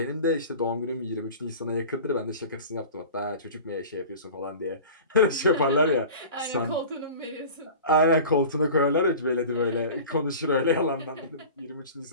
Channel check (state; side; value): inverted; both; correlation -0.38